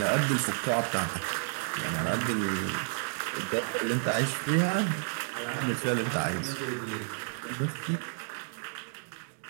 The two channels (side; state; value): left; silent; digital silence